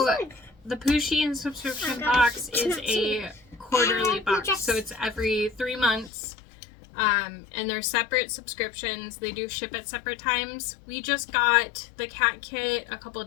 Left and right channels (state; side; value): drops out; right; at 6.1 s